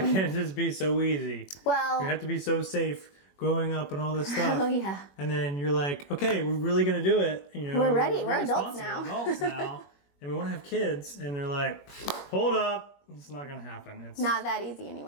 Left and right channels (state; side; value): late; right; 21 ms